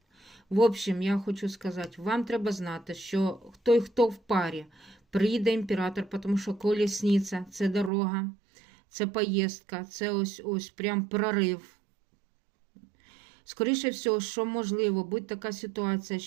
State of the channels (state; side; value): drops out; left; at 7.9 s